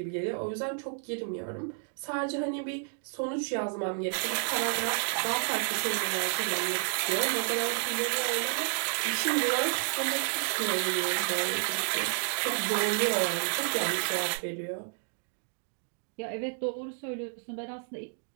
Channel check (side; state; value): left; silent; 57 dB below the other